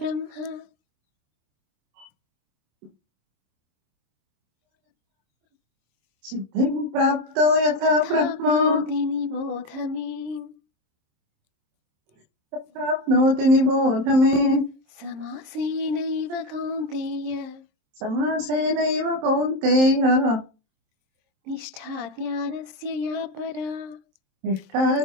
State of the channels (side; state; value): left; late; 27 ms